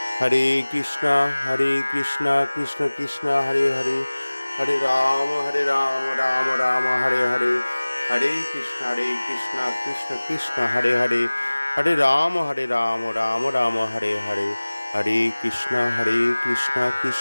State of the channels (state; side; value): inverted; both; correlation -1.00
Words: হরে কৃষ্ণ কৃষ্ণ কৃষ্ণ হরে হরে, হরে রাম রাম রাম হরে হরে, হরে কৃষ্ণ কৃষ্ণ কৃষ্ণ হরে হরে, হরে রাম রাম রাম হরে হরে, হরে কৃষ্ণ